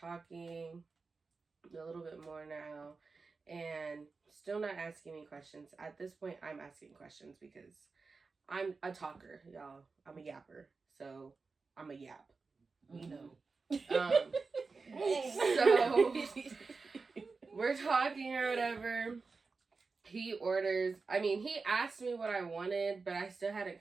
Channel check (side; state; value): left; quieter; 4.3 dB